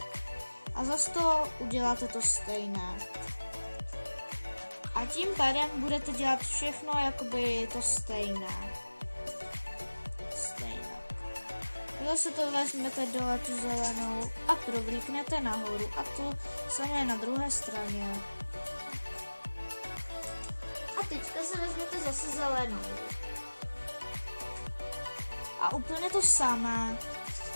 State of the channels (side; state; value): both; inverted; correlation -1.00